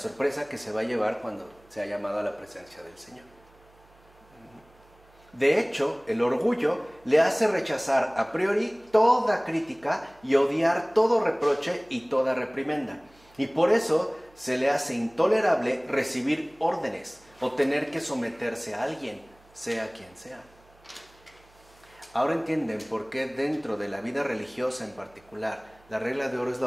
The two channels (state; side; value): noise; right; hum, 29 dB below the sound